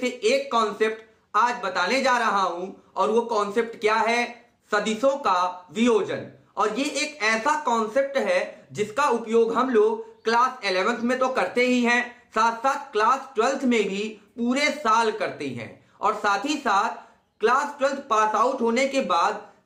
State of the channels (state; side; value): identical; both; correlation 1.00